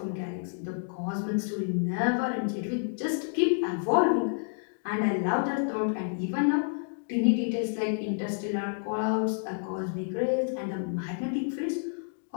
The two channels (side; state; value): right; silent; digital silence